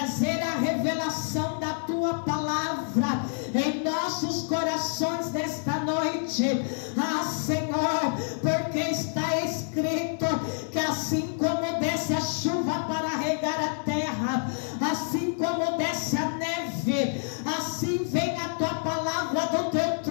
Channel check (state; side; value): silent; right; 60 dB below the other